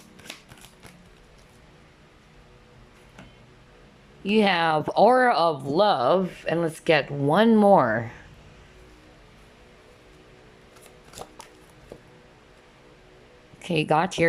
You have Aura of Love, and let's get one more. Okay, got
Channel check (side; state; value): both; identical; correlation 1.00